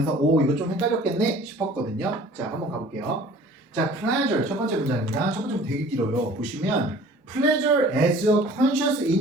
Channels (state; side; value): normal; both; correlation 0.48